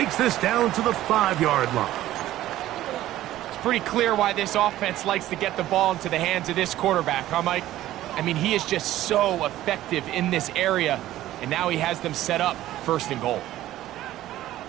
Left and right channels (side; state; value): left; quieter; 14.3 dB